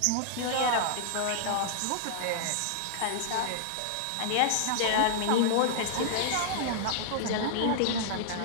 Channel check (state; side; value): different; both; correlation -0.01